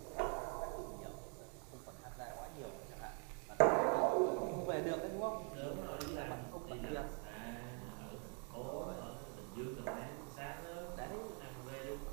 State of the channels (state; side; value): quieter; left; 37.2 dB